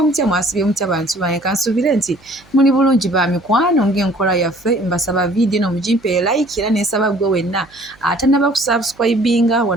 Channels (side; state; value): right; noise; hum, 29 dB below the sound